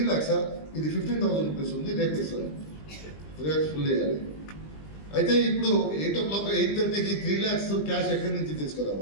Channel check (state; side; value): late; right; 20 ms